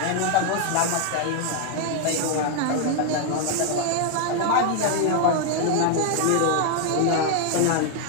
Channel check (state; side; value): different; both; correlation 0.00